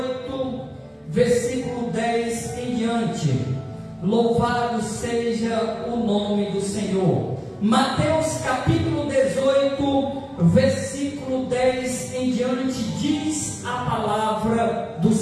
versículo 10 em diante. Louvado seja o nome do Senhor. Mateus capítulo 18, versículo 10 em diante, diz a palavra do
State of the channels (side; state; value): both; identical; correlation 1.00